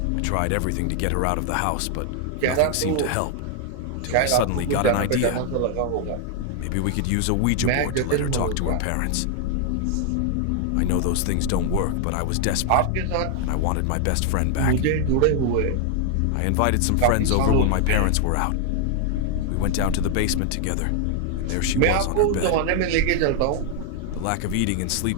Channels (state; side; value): different; both; correlation 0.00